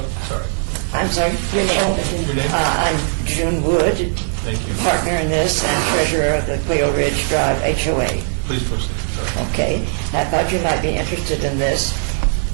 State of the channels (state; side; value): silent; left; digital silence